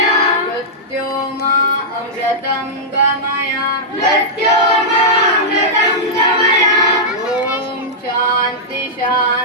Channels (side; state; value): both; normal; correlation -0.10